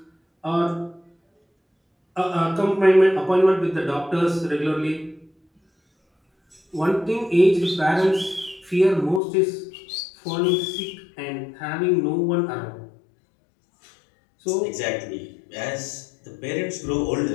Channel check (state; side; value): drops out; right; at 9.2 s